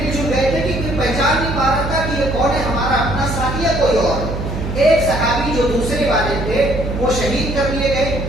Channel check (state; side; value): noise; right; hum, 4 dB below the sound